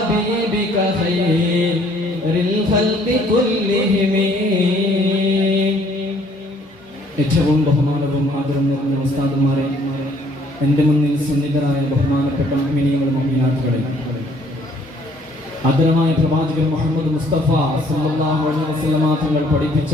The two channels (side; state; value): both; normal; correlation 0.61